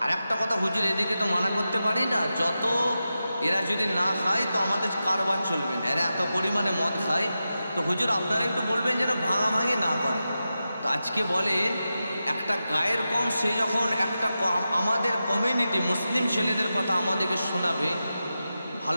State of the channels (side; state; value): both; inverted; correlation -0.91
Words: আর একটা কথা হুজুর, এদিকে তো মানা করতে পারি না, যত এরা যদি না খায় তো আমাদের কারবার চলবে না, এরা এত পরিমাণে মদ খায়, তো হুজুর আপনারা একটু বলবেন যেন ভাঙাভাঙি না করে। তো আজকে বলেন একটা গায়ের কম, সে যখন একটা আমাদের কমিউনিটি মুসলিম ছেলেদের কথা আমাদেরকে শোনাবে,